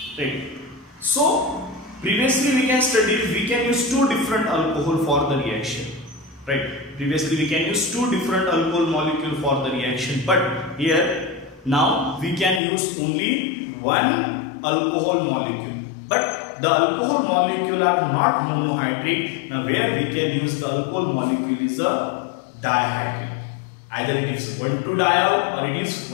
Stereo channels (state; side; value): drops out; right; at 12.6 s